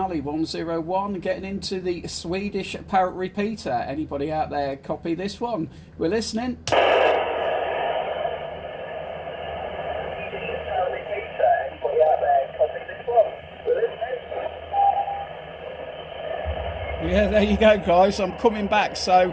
101 getting into the Swedish Parrot repeater. Anybody out there copy this one? We're listening. Yeah, there you go, guys. I'm coming back.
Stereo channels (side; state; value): both; identical; correlation 1.00